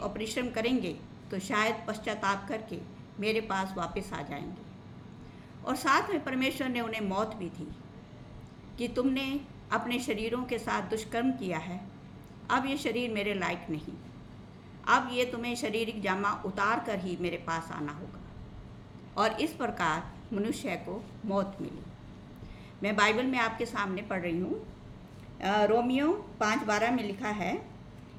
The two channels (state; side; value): identical; both; correlation 1.00